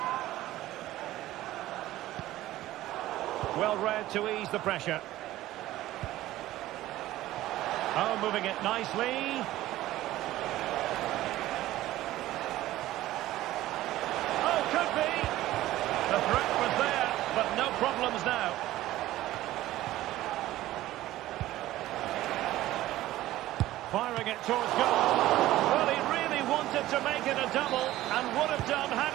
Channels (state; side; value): quieter; left; 15.4 dB